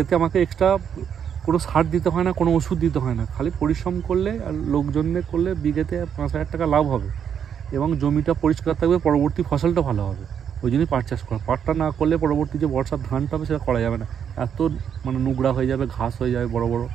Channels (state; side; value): quieter; left; 8.2 dB